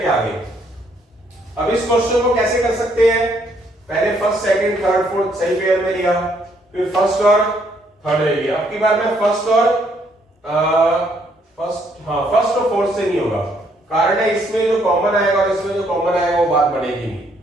आ गए। अब इस क्वेश्चन को कैसे कर सकते हैं, पहले फर्स्ट सेकंड थर्ड फोर्थ सही पेयर में लिया, फिर फर्स्ट और थर्ड ले लिया। अब की बार मैं फर्स्ट और फोर्थ से नहीं होगा, कारण है इसमें जो कॉमन आएगा और इसमें जो कॉमन आएगा वो बात बनेगी नहीं।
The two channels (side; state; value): both; normal; correlation 0.69